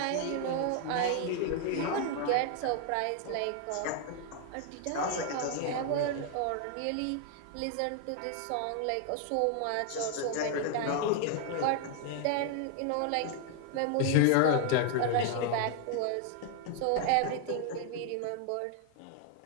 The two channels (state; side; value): different; both; correlation 0.00